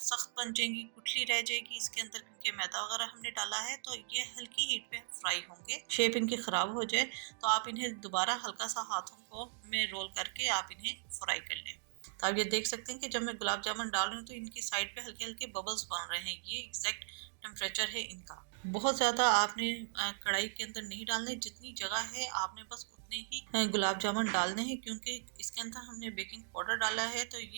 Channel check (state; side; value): silent; left; digital silence